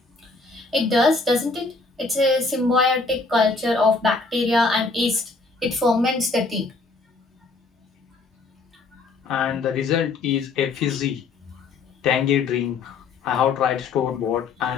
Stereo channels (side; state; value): right; quieter; 3.9 dB